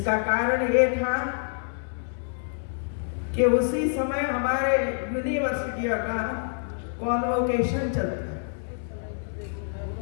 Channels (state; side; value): silent; right; 60 dB below the other